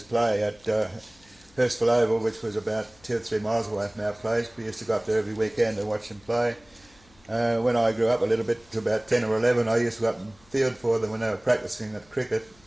play at Hurstville Oval, which was about 2 or 3 miles away from our place. We used to go up there every weekend and watch them play. When I grew up a little bit, to about 10 or 11, I used to go up and field for them when they were practising at cricket,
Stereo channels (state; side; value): noise; left; hum, 29 dB below the sound